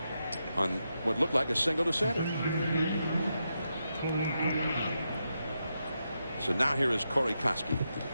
on what looked like a single to center. So now here is Corey Koski.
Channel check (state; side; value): inverted; both; correlation -0.85